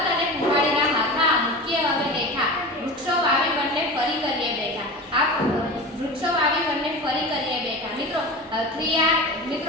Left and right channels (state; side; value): normal; both; correlation 0.30